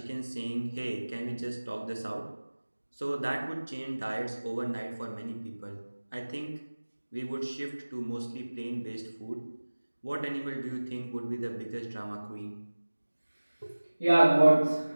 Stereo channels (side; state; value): both; inverted; correlation -1.00